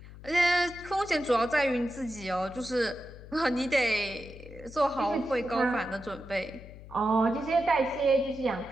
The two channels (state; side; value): noise; left; hum, 16 dB below the sound